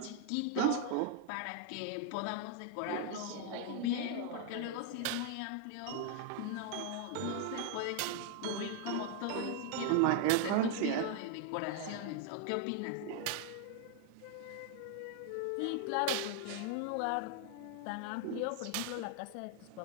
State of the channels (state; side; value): different; both; correlation 0.00